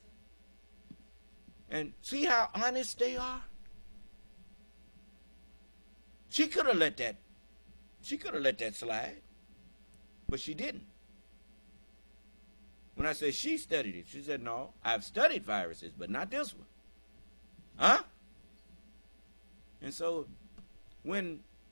And see how honest they are? She could have let that slide, but she didn't. When I say she studied it, she said, no, I've studied viruses, but not this one. Huh? And so when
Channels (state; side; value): inverted; both; correlation -1.00